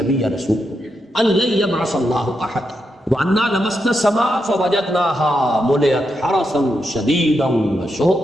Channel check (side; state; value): both; normal; correlation 0.84